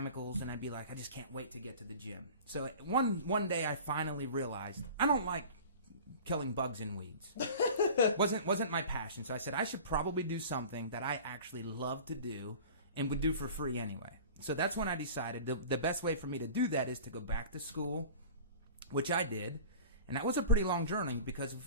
and I'd be like, I just can't wait to get to the gym. So one day I finally realized I don't like killing bugs and weeds. wasn't my passion. So I said I should probably do something that I actually love to do and would do for free anyway. So that's when I decided the best way for me to do that is to go back to school, which I did. And that was a pretty long journey because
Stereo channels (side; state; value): both; inverted; correlation -0.39